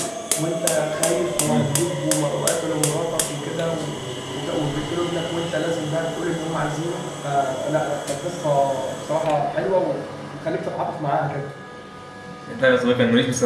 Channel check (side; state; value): both; identical; correlation 1.00